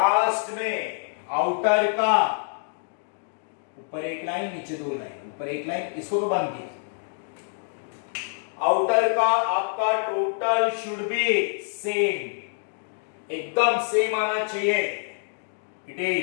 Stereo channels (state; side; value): silent; right; digital silence